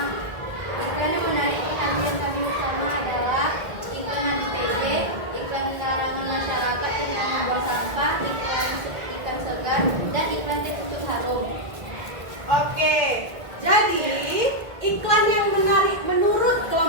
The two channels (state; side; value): late; left; 1.8 ms